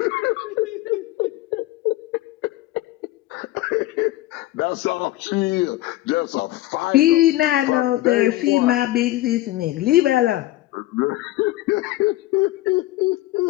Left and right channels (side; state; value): right; quieter; 16.6 dB